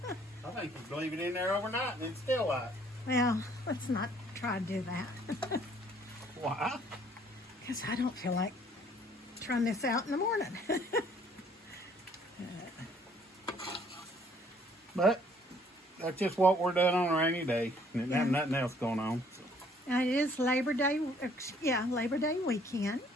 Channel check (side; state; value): both; normal; correlation 0.61